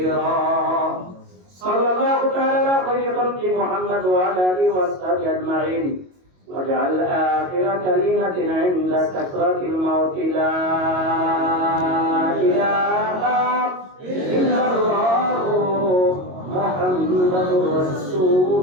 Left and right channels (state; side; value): late; left; 22 ms